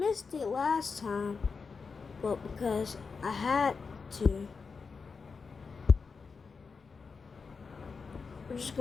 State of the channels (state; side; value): quieter; right; 5.0 dB